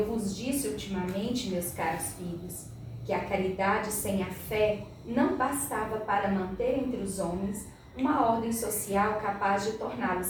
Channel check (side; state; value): both; identical; correlation 1.00